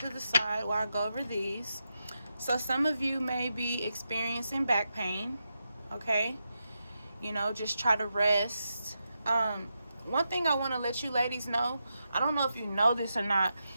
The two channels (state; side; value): inverted; both; correlation -0.87